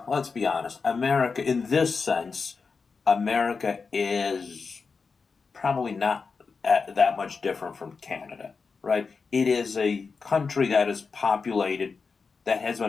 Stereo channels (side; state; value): right; quieter; 4.9 dB